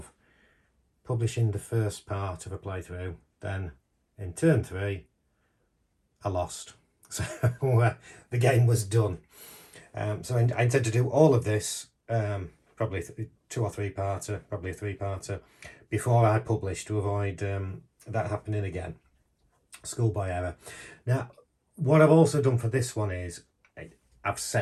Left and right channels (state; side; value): identical; both; correlation 1.00